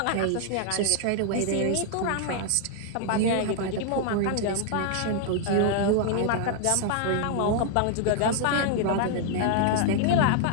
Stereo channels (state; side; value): different; both; correlation -0.01